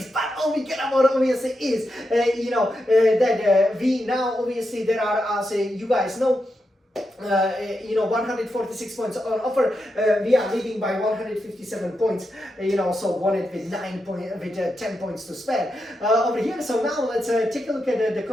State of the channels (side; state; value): both; normal; correlation 0.86